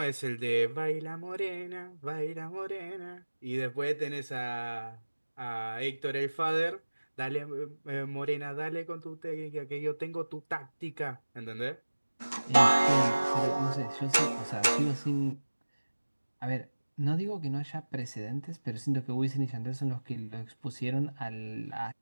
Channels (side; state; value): both; inverted; correlation -1.00